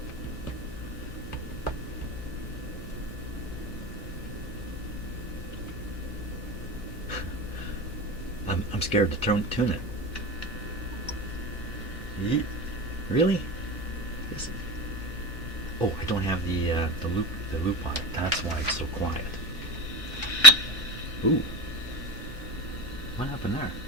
I'm scared to tune it. Really? Oh, I don't have the loop on it. That's why it's so quiet. Ooh. What happened there?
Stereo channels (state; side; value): noise; left; hum, 11 dB below the sound